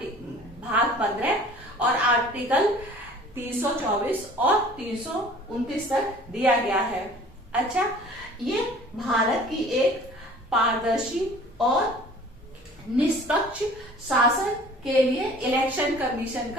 भाग 15 और आर्टिकल 324 और 329 तक दिया गया है। अच्छा, ये भारत की एक पारदर्शी और निष्पक्ष शासन के लिए इलेक्शन कमीशन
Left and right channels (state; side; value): normal; both; correlation 0.48